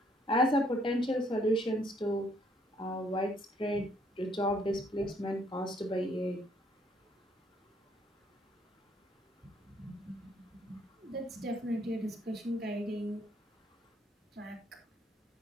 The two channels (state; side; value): normal; both; correlation 0.66